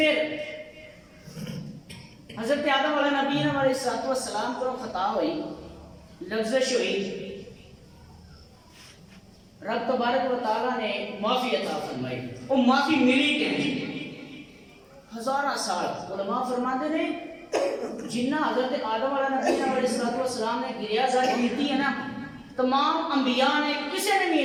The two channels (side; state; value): both; identical; correlation 1.00